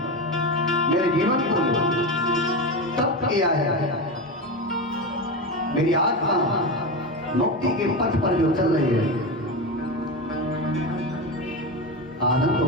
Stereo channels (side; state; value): both; normal; correlation 0.18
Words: मेरे जीवन को तप किया है। मेरी आत्मा मुक्ति के पथ पर जो चल रही है, आनंद हो